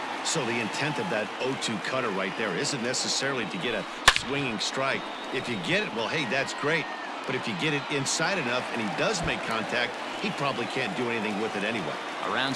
So the intent of that 0-2 cutter right there isn't necessarily to get a swinging strike. If you get it, well, hey, that's great. But if you get it inside enough and he does make contact, he probably can't do anything with it anyway. Around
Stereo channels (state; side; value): identical; both; correlation 1.00